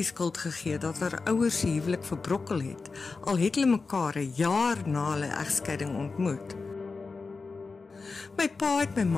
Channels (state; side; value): quieter; right; 4.3 dB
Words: skuld gegee dat haar ouers se huwelik verbrokkel het, al het hulle mekaar 'n jaar na hulle egskeiding ontmoet. My pa het my